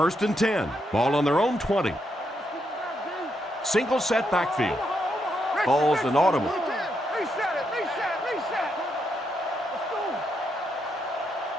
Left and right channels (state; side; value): normal; both; correlation 0.80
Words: and 10. Ball on their own 20. Single set backfield. Ball's inaudible.